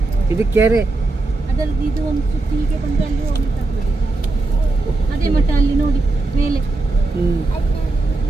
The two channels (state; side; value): quieter; left; 3.2 dB